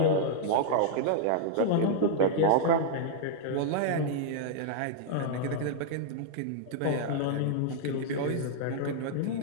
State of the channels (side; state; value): both; different; correlation -0.01